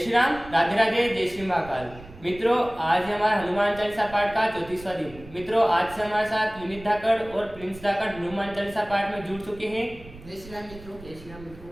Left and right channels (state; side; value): noise; right; rumble, 18 dB below the sound